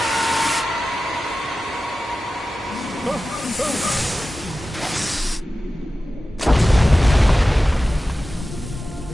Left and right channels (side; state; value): both; normal; correlation 0.94